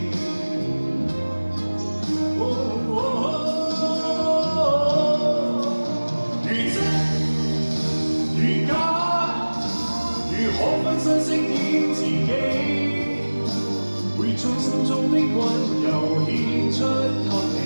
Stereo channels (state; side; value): inverted; both; correlation -1.00